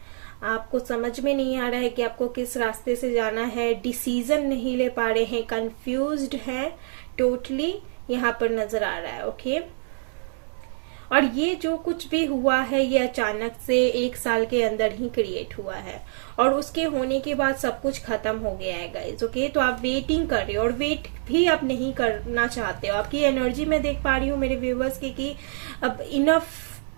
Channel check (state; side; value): silent; left; 61 dB below the other